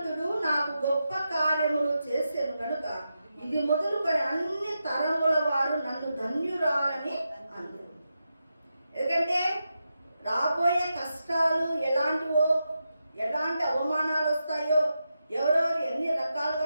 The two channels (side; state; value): both; inverted; correlation -0.88